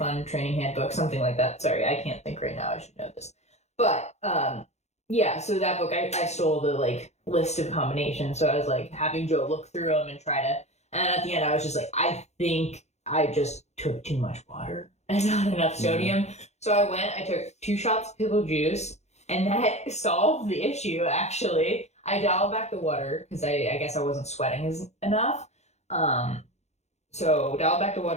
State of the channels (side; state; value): right; late; 0.32 ms